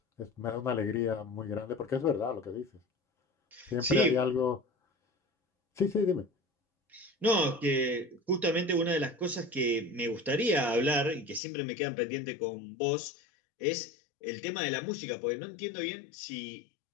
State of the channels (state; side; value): drops out; right; at 11.4 s